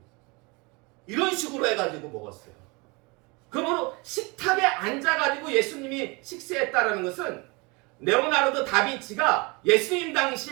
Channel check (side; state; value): left; quieter; 27.7 dB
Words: 이런 식으로 해가지고 먹었어요. 그러므로 식탁에 앉아가지고 예수님이 식사했다라는 것은, 레오나르도 다빈치가 예수님